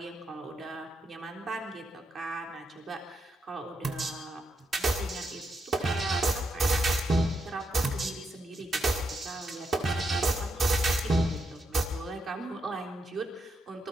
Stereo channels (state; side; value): normal; both; correlation 0.81